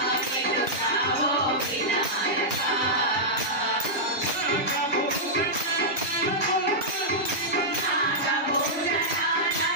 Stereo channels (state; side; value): normal; both; correlation -0.09